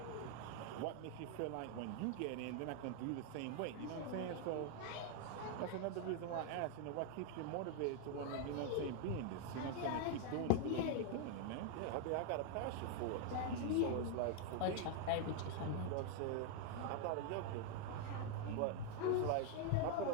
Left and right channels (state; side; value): different; both; correlation 0.00